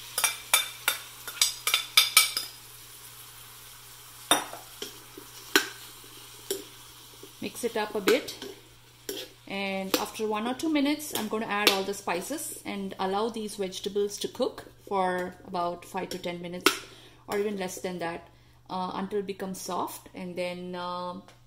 Mix it up a bit, and after 1 or 2 minutes I'm going to add all the spices and allow these vegetables to cook for about 5 to 10 minutes or even less than that until it becomes soft, and then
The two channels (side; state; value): both; identical; correlation 1.00